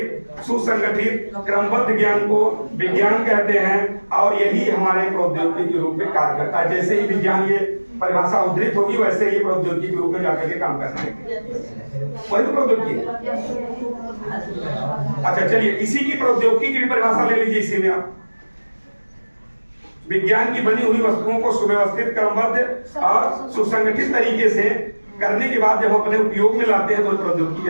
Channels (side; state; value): both; inverted; correlation -1.00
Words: सुसंगठित, क्रमबद्ध ज्ञान को विज्ञान कहते हैं, और यही हमारे प्रौद्योगिकी के रूप में कार्य करता है। जैसे ही विज्ञान ये परिभाषा उद्धृत होगी, वैसे ही प्रौद्योगिकी के रूप में जाकर के काम करना है, वही तो प्रौद्योगिकी है। अच्छा चलिए, इसी की प्रौद्योगिकी की भी परिभाषा ले लीजिए। इसी में आप विज्ञान की बनी हुई वस्तुओं को सुव्यवस्थित, क्रमबद्ध और सुसंगठित तरीके से करने के बाद जब हम अपने उपयोग में लाते हैं तो प्रौद्योगिकी